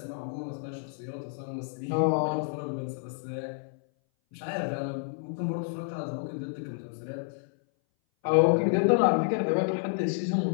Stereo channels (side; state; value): right; silent; 58 dB below the other